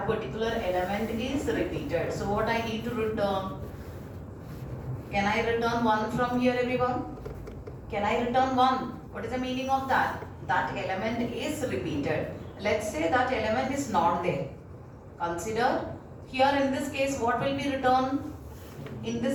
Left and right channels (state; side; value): identical; both; correlation 1.00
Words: particular element is repeated. So what I need to return? Can I return 1 from here, everyone? Can I return 1? What is the meaning of that? That element is repeated. Let's say that element is not there. Consider here in this case what will be returned? In